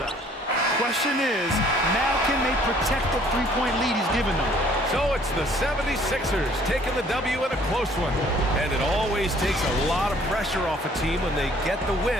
Question is, now can they protect the three-point lead he's given them? So it's the 76ers taking the W in a close one. And it always takes a lot of pressure off a team when they get the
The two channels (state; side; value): normal; both; correlation 0.58